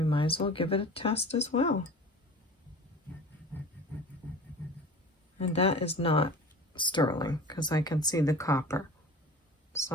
might as well give it a test as well. And that is not sterling because I can see the copper.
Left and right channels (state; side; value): normal; both; correlation 0.39